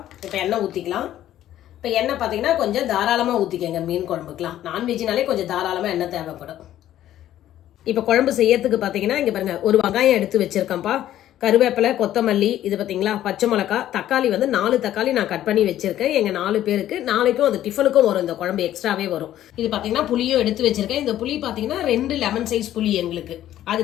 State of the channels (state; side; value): quieter; right; 12.5 dB